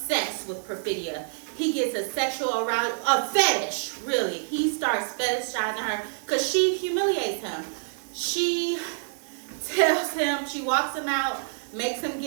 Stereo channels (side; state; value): left; silent; digital silence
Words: with Perfidia. He gets a sexual arousal, a fetish, really. He starts fetishizing her because she humiliates him. She tells him, she walks him out, makes him